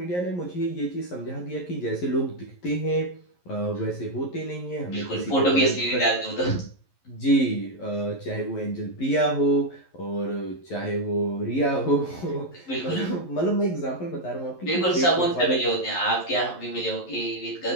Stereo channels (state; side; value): late; right; 11 ms